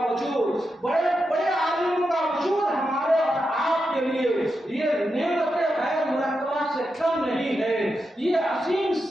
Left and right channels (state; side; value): normal; both; correlation 0.87